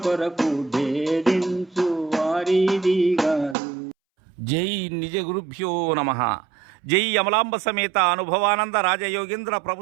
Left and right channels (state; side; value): drops out; left; at 3.6 s